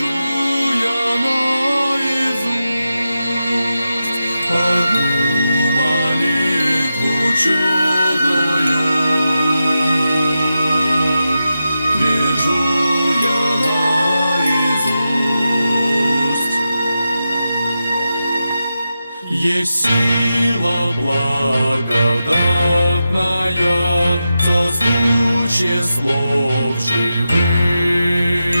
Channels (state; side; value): inverted; both; correlation -0.90